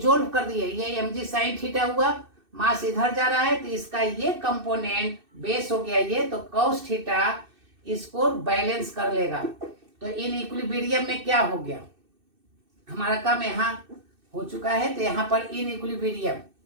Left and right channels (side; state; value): left; late; 2.6 ms